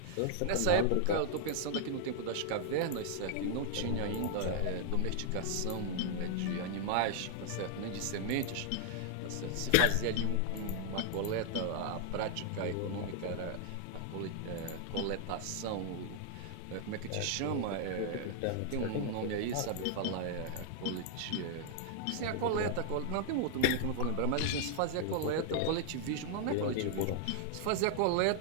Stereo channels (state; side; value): different; both; correlation 0.00